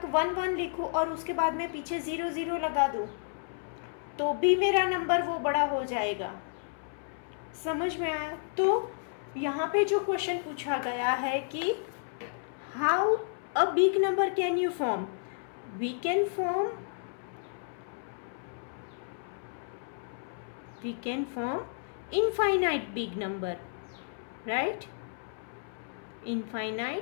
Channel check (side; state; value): right; silent; 57 dB below the other